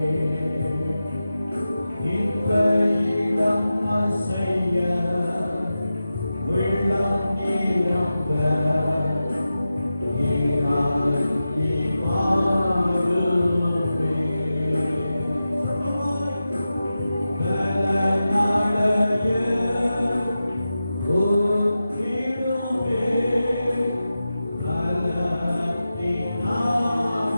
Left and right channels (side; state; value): both; inverted; correlation -0.92